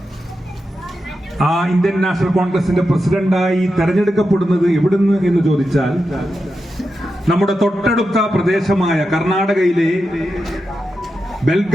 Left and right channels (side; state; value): both; normal; correlation 0.89